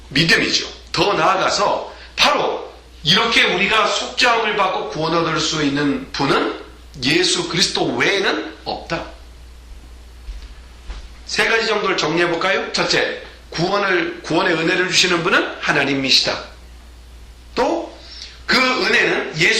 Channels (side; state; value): both; identical; correlation 1.00